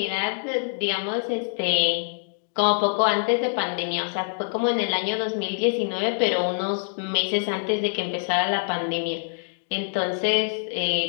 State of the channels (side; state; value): right; silent; digital silence